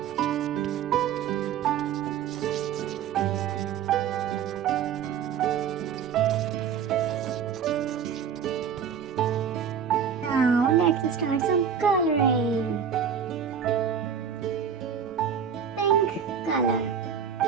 Now let's start some coloring. Pink color.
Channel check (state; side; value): quieter; left; 7.6 dB